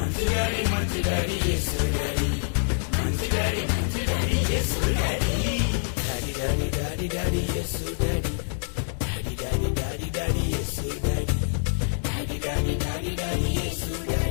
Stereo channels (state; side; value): silent; right; digital silence